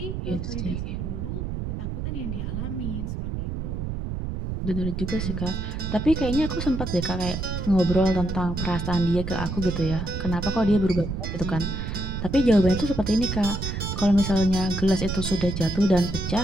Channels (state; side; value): noise; right; rumble, 4 dB below the sound